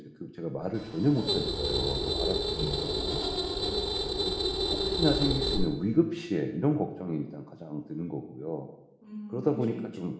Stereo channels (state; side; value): identical; both; correlation 1.00